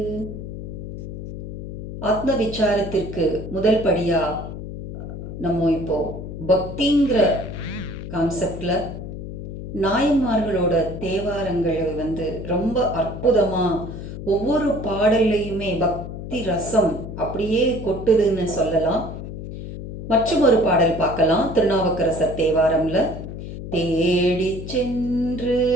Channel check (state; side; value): noise; left; hum, 9 dB below the sound